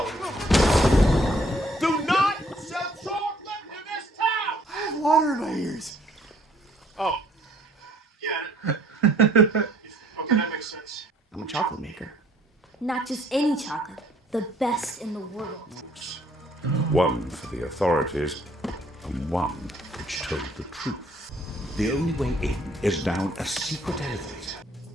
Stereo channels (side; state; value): both; normal; correlation 0.61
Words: Do not ears. Oh. Yeah. Okay, that makes sense. I'm a chocolate maker. Not just any chocolate, the best in the world. One for the authorities, and one which told the truth. The only way in is down a secret elevator.